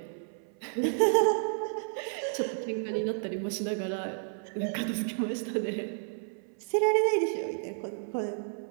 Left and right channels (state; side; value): silent; left; 57 dB below the other